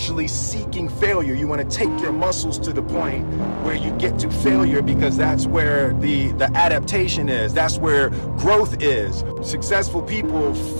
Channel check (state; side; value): inverted; both; correlation -1.00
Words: seeking failure. You want to take your muscles to the point where you get to failure, because that's where the adaptation is. That's where growth is. Successful people